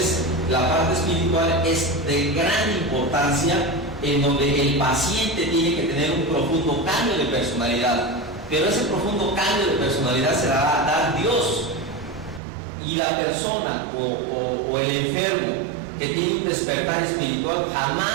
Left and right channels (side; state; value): left; drops out; at 12.4 s